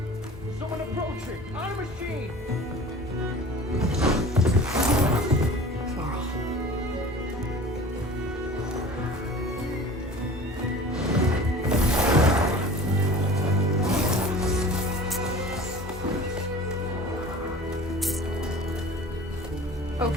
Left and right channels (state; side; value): normal; both; correlation 0.41